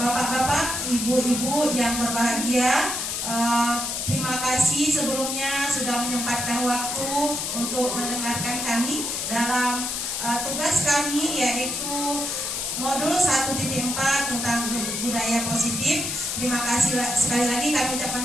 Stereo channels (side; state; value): left; noise; hiss, 3 dB below the sound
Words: ibu-ibu yang berbahagia, terima kasih sebelumnya sudah menyempatkan waktu untuk mendengarkan kami dalam tugas kami, yaitu modul 1.4 tentang budaya positif. Terima kasih sekali lagi, kami